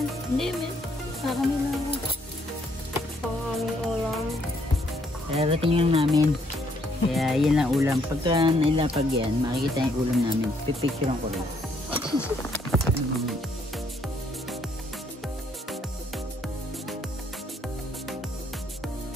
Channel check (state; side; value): normal; both; correlation 0.69